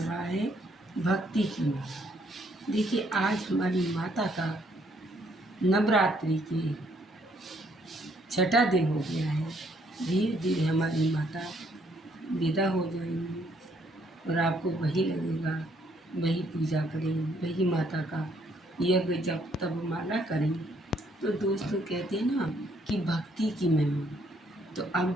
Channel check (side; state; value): both; normal; correlation 0.68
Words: है भक्ति की माँ। देखिए, आज हमारी माता का नवरात्रि के छठा दिन हो गया है। धीरे धीरे हमारी माता विदा हो जाएंगी और आपको वही लगेगा, वही पूजा करें, वही माता का यज्ञ जब तब माला करें। तो दोस्तों, कहते हैं ना कि भक्ति की महिमा। तो अब